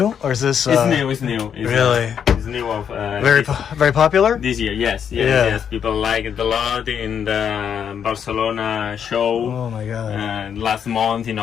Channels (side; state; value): right; quieter; 8.0 dB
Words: or is this? It's new. It's really? It's new of very popular this year. Yes. People like it a lot in the Barcelona show. Oh my god! Last month in